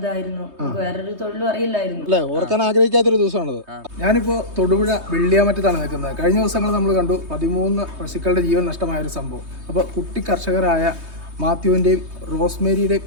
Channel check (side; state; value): left; late; 3.2 ms